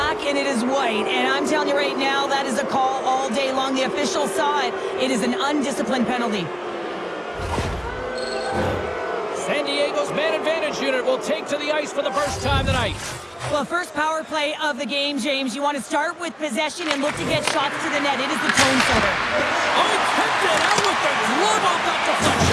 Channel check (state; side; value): identical; both; correlation 1.00